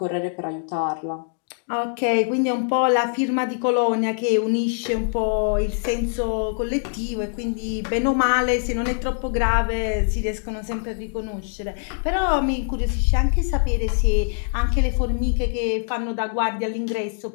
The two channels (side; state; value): right; silent; digital silence